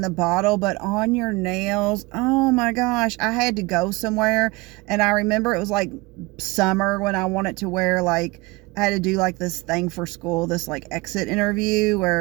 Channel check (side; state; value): left; quieter; 23.9 dB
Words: the bottle, but on your nails, oh my gosh, I had to go somewhere, and I remember it was like summer when I wanted to wear, like, I had to do like this thing for school, this like exit interview